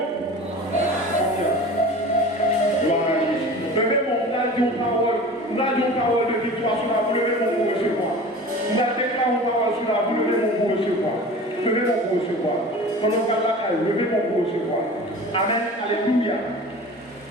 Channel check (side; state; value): both; normal; correlation 0.38